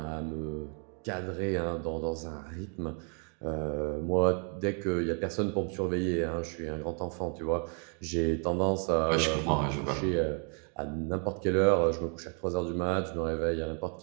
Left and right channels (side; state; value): left; quieter; 39.8 dB